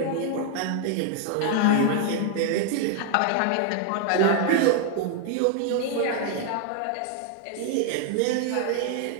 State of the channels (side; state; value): both; different; correlation 0.00